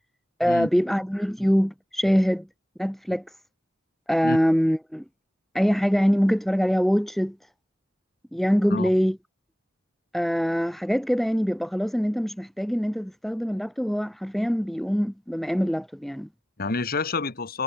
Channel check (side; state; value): both; normal; correlation 0.96